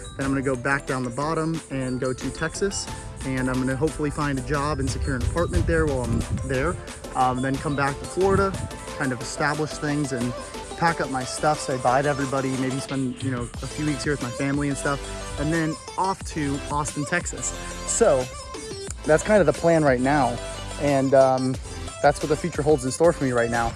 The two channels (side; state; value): both; identical; correlation 1.00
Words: I'm going to go back down the bottom and go to Texas. And I'm going to hopefully find a job and secure an apartment there while I'm there. Then come back to Florida, kind of establish things and pack up my stuff, say bye to everybody, maybe spend, you know, a few weeks here with my family and stuff, and then off to Austin, Texas. So that's kind of the plan right now. And that's what the future holds in store for me right now.